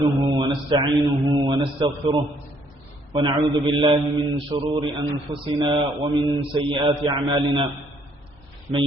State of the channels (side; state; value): both; normal; correlation 0.66